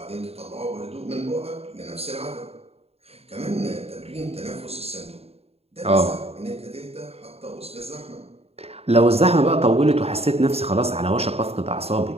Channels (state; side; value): late; left; 0.29 ms